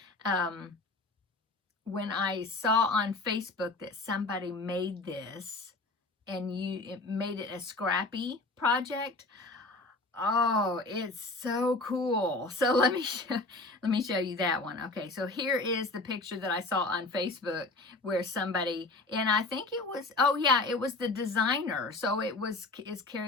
when I saw on Facebook that somebody made this, and it made it a scrappy project. Oh, it's so cool. So let me show you that one. Okay, so here is the picture that I saw on Facebook where somebody, and I think it was, oh yeah, it was the designer. So is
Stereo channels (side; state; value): right; quieter; 3.2 dB